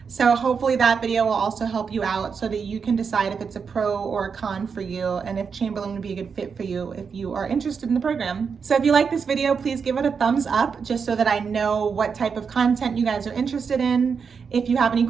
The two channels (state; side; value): quieter; left; 5.9 dB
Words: So hopefully that video will also help you out so that you can decide if it's a pro or a con for you, and if Chamberlain would be a good fit for you if you are interested in the program. So if you like this video, please give it a thumbs up, just so that I know what type of content you guys are interested in. If you have any